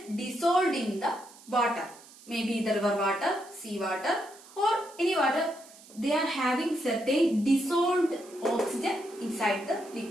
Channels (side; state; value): right; noise; hiss, 22 dB below the sound